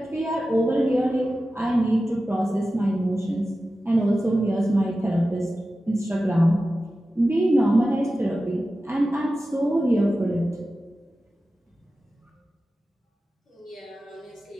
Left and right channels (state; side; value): normal; both; correlation 0.94